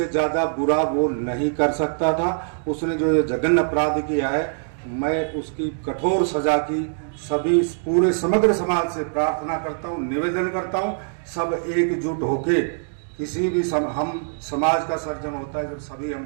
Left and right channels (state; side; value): silent; left; digital silence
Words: ज्यादा बुरा वो नहीं कर सकता था। उसने जो ये जघन्य अपराध किया है, मैं उसकी कठोर सजा की सभी पूरे समग्र समाज से प्रार्थना करता हूँ, निवेदन करता हूँ। सब एकजुट होके किसी भी हम समाज का सर्जन होता है जब सभी